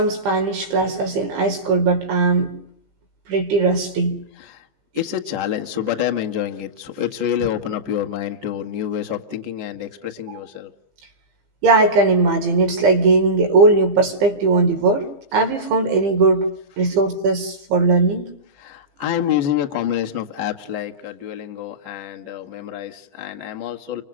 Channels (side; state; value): left; late; 15 ms